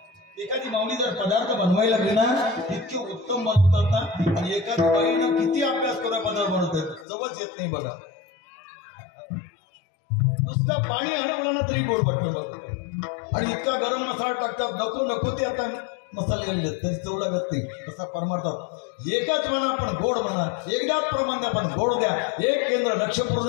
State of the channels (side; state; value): right; drops out; at 7.1 s